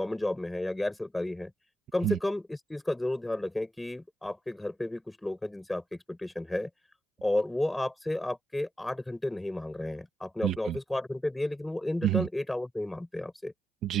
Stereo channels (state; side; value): normal; both; correlation 0.87